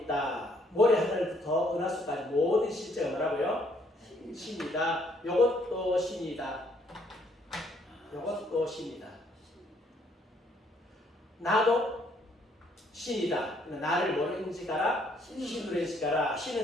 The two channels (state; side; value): normal; both; correlation 0.67